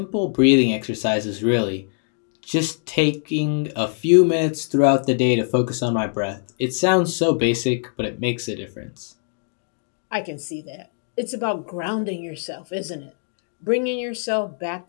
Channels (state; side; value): silent; right; 64 dB below the other